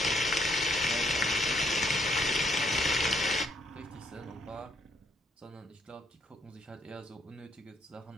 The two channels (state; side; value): normal; both; correlation 0.71